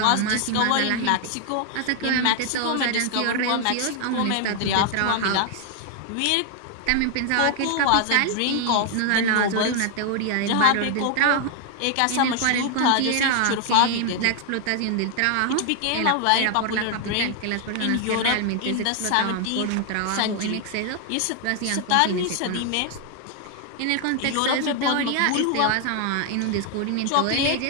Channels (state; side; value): different; both; correlation 0.00